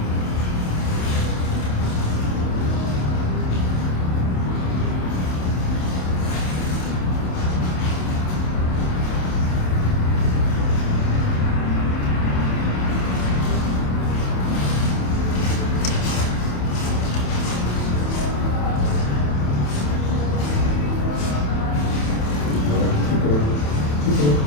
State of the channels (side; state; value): right; late; 27 ms